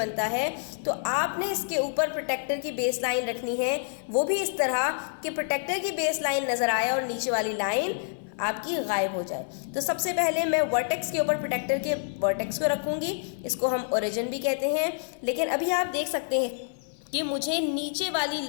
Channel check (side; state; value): right; silent; 60 dB below the other